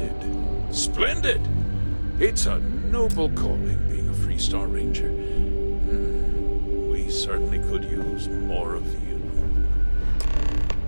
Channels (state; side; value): inverted; both; correlation -1.00